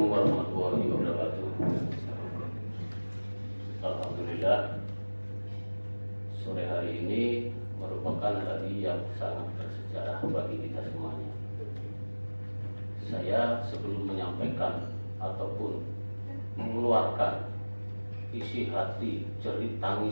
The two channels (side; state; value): both; inverted; correlation -1.00